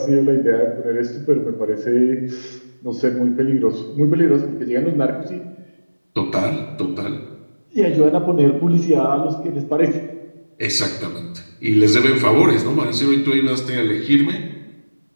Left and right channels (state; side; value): inverted; both; correlation -1.00